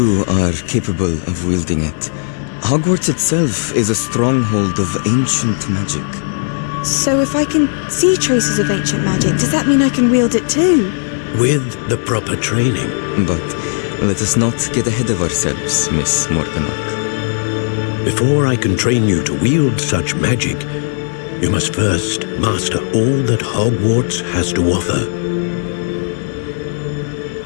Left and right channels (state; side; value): silent; right; digital silence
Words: are capable of wielding it. Hogwarts itself is a stronghold of ancient magic. So if I can see traces of ancient magic, does that mean I can wield it too? With the proper training. But let us not get ahead of ourselves, Miss Morganach. Before I can train you to wield such magic, you must first master all that Hogwarts has to offer.